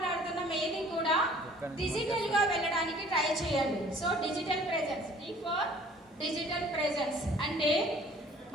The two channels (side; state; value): both; normal; correlation 0.52